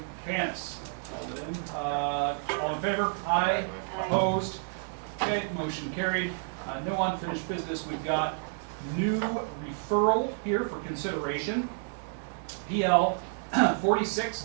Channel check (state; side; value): silent; left; digital silence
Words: Panis. All in favor? Aye. Opposed? Okay, motion carried. No unfinished business. We've got new referral here for consideration. PL